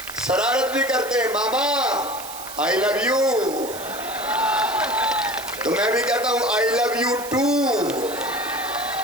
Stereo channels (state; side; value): noise; right; hiss, 12 dB below the sound